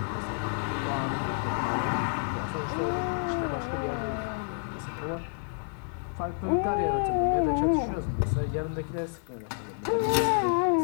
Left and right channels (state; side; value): silent; right; digital silence